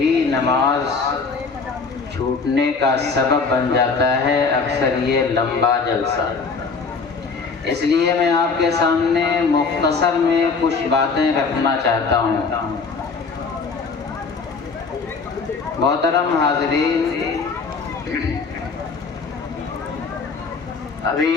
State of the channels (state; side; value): quieter; right; 4.7 dB